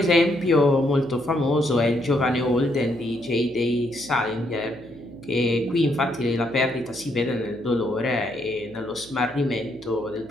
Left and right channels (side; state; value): left; noise; hum, 24 dB below the sound